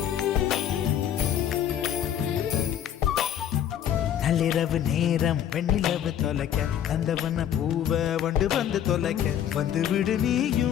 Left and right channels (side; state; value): right; quieter; 10.0 dB